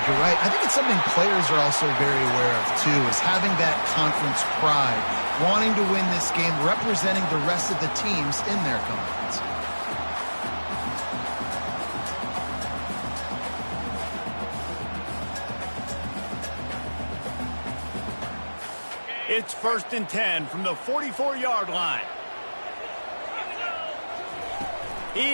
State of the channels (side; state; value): both; inverted; correlation -1.00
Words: you're right. I think it's something players are also very aware of, too, is having that conference pride, wanting to win this game, representing the rest of the teams in their conference. It's 1st and 10 from the 44-yard line.